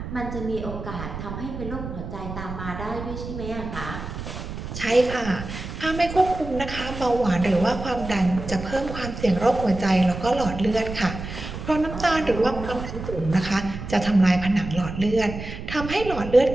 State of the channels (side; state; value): right; noise; rumble, 9 dB below the sound